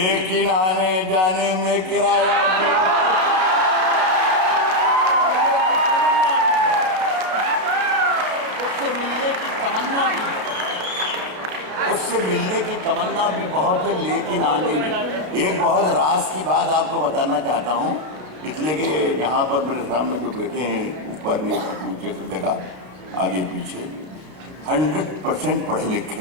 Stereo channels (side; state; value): left; late; 32 ms